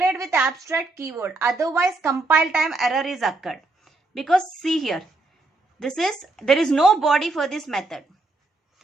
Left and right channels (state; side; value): quieter; left; 3.1 dB